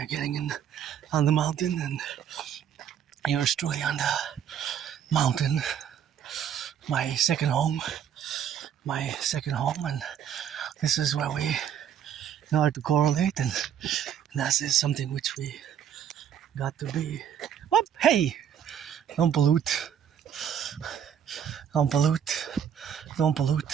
getting in on the mountain, and yours truly on the mountain. My second home. my second home, and this is where we know how to correlate, and that is something which we got to be. Whoop, hey, don't pollute, don't pollute, don't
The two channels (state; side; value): quieter; left; 8.9 dB